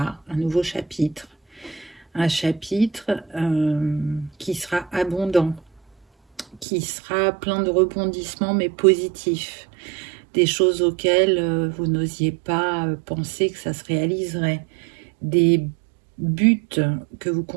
un nouveau chapitre. Un chapitre qui sera abondant, qui sera plein de rebondissements, mais positifs. Des choses auxquelles vous n'osiez pas penser que ça se réaliserait. Des buts que vous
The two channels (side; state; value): left; drops out; at 6.7 s